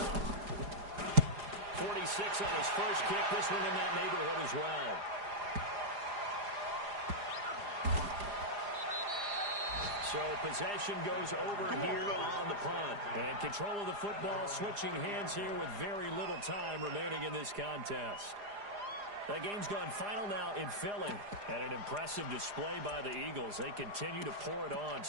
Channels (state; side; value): late; left; 4.9 ms